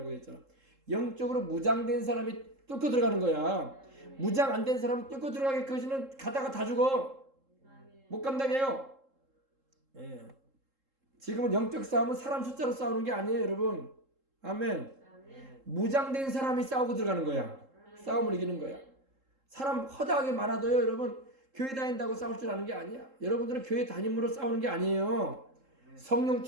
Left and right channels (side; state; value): left; late; 3.7 ms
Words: 했잖아. 영적으로 무장된 사람이 뚫고 들어가는 거야. 무장 안 된 사람은 뚫고 들어가기까지는 가다가 다 죽어. 못 감당해요. 예. 지금은 영적 싸움은 사람 숫자로 싸우는 게 아니에요, 여러분. 아멘. 무장된 사람이 싸우고 들어가는 거야. 싸움을 이기는 거야. 사람 허다하게 많아도요, 여러분, 교회 다닌다고 싸울 줄 아는 게 아니야. 여러분들은 교회 다님으로 싸우는 게 아니에요. 성령